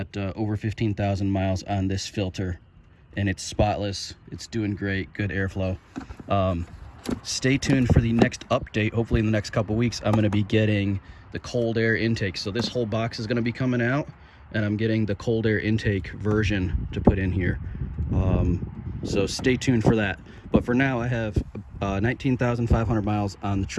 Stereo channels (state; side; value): identical; both; correlation 1.00